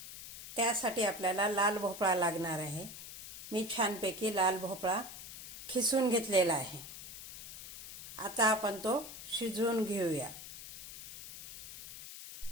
त्यासाठी आपल्याला लाल भोपळा लागणार आहे। मी छानपैकी लाल भोपळा खिसून घेतलेला आहे। आता आपण तो शिजवून घेऊया।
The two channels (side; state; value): left; noise; hiss, 12 dB below the sound